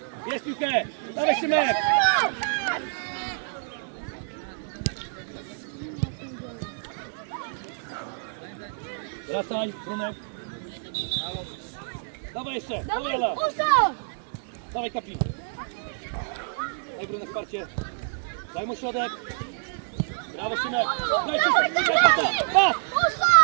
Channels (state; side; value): silent; left; digital silence